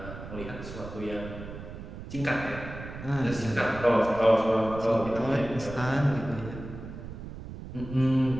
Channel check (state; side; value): noise; right; rumble, 11 dB below the sound